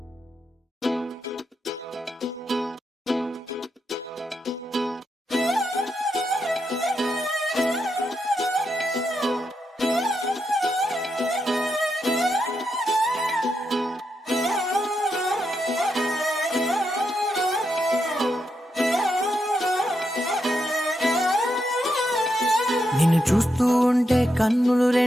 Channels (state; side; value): normal; both; correlation 0.83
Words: నిన్ను చూస్తూ ఉంటే కన్నులు